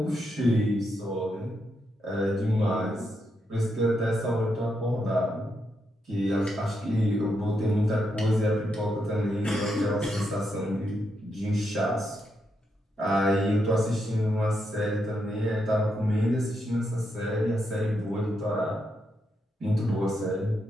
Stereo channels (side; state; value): both; normal; correlation 0.82